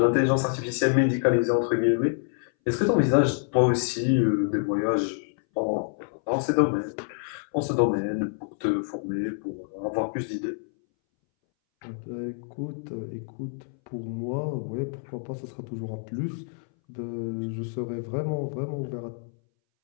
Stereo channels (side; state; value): right; silent; 60 dB below the other